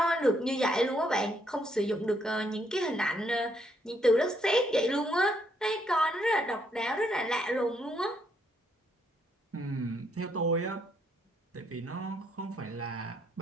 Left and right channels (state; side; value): normal; both; correlation 0.73